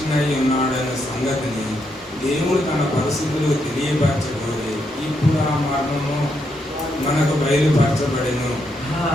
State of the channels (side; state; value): both; normal; correlation 0.79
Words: అయి ఉన్నాడన్న సంగతిని దేవుడు తన పరిస్థితులు తెలియపరచబోయి ఇప్పుడు ఆ మర్మము మనకు బయలుపరచబడెను.